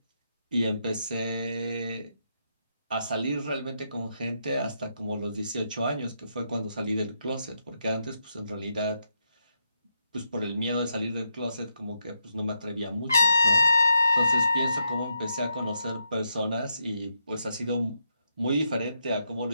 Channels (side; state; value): both; inverted; correlation -0.82